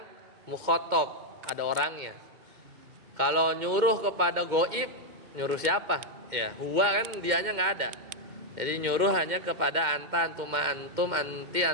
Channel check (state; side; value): late; left; 2.1 ms